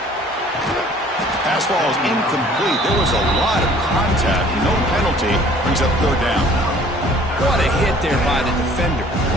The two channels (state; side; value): normal; both; correlation 0.54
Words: Pass ball is incomplete. There was a lot of contact. No penalty. Brings up third down. What a hit there by the defender.